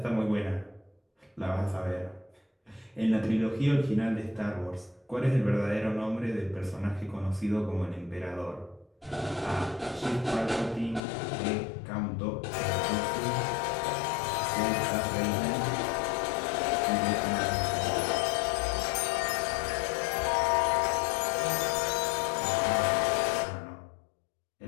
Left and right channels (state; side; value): drops out; right; at 11.0 s